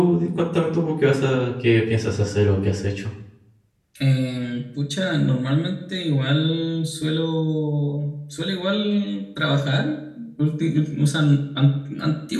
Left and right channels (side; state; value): both; identical; correlation 1.00